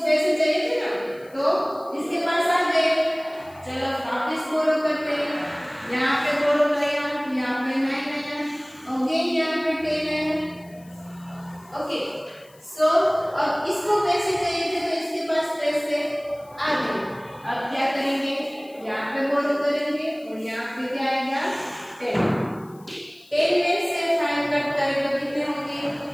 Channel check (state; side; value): noise; left; hiss, 28 dB below the sound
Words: चाहिए थे ना तो इसके पास आ गए, चलो वापस बोरो करते हैं। यहाँ पे बोरो आया, यहाँ पे 9 आया, अगेन यहाँ पे 10 आया। ओके सो अब इसको पैसे चाहिए थे तो इसके पास पैसे आ गए। अब क्या करेंगे, यहाँ पे बोरो करेंगे और यहाँ पे क्या आएगा 10। 10 में से 5 कट करें तो कितने होंगे